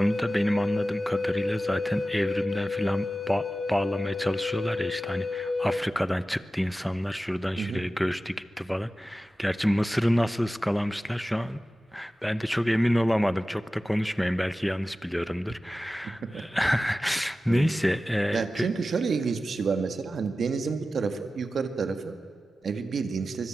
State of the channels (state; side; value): normal; both; correlation 0.95